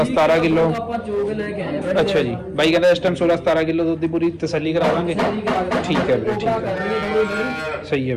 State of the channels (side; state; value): both; identical; correlation 1.00